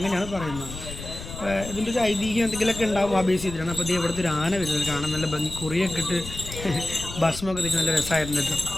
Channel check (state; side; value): noise; left; rumble, 11 dB below the sound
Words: പറയുന്നത്. ഇതിൻ്റെ ഒരു ഐതിഹ്യം എന്തെങ്കിലുമൊക്കെ ഉണ്ടാവും ആ ബേസ് ചെയ്തിട്ടാണ്. അപ്പോൾ ഇത് ഇവിടുത്തെ ഒരു ആന വരുന്നത് കാണാൻ നല്ല ഭംഗി, കുറിയൊക്കെ ഇട്ട് ഭക്ഷണമൊക്കെ തിരിച്ച് നല്ല രസമായിരുന്നു കേട്ടോ,